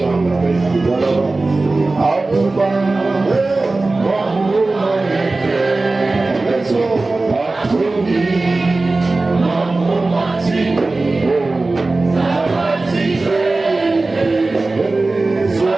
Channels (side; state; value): left; quieter; 3.3 dB